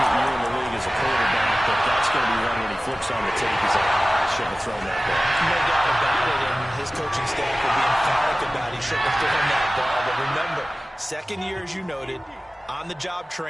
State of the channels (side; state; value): both; normal; correlation 0.97